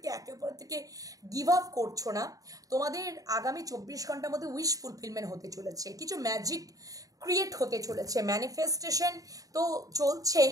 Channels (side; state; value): left; late; 0.17 ms